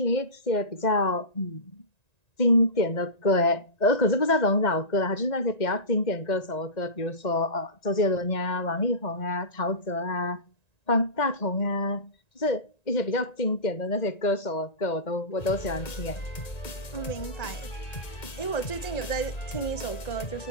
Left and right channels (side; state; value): right; late; 1.9 ms